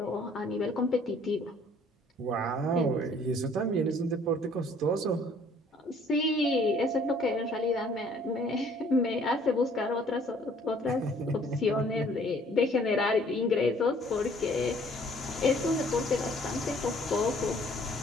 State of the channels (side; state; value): both; normal; correlation 0.58